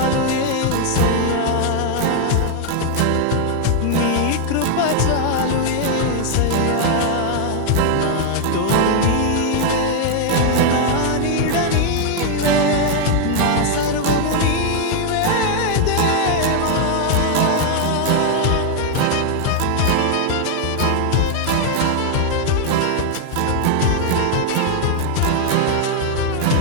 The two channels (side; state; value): both; different; correlation 0.00